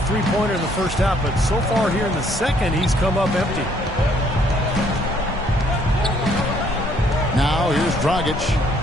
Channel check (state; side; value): normal; both; correlation 0.65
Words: three-pointer in the first half, but so far here in the second, he's come up empty. Now here's Dragic.